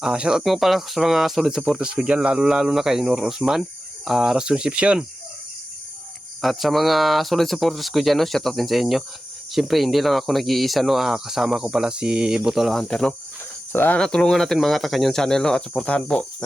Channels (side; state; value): both; normal; correlation 0.94